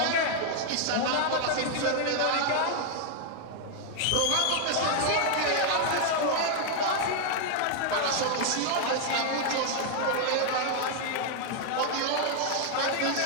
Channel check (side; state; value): both; different; correlation 0.00